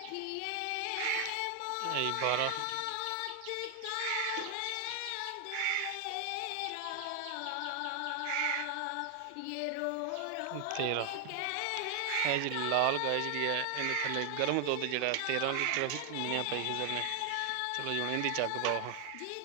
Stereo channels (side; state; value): both; different; correlation 0.00